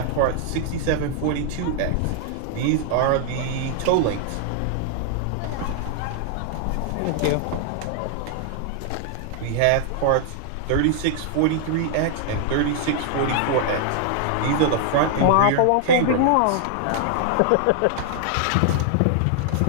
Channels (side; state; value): both; different; correlation 0.00